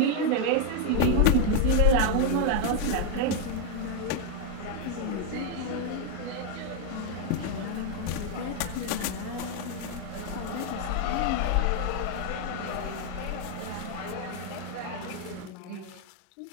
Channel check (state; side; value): different; both; correlation 0.01